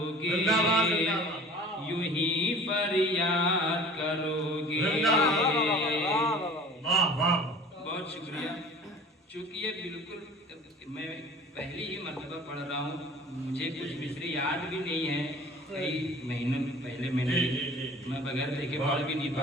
यूं ही फरियाद करोगे। बहुत शुक्रिया। चूँकि ये बिल्कुल मैं पहली ही मरतबा पढ़ रहा हूँ, मुझे कुछ मिसरे याद भी नहीं है, कई महीनों पहले मैंने मैं बगैर देखे पढ़ भी नहीं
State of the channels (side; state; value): both; normal; correlation 0.45